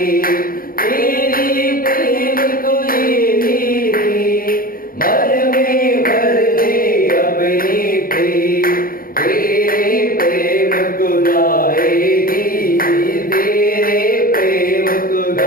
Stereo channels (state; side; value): late; right; 0.42 ms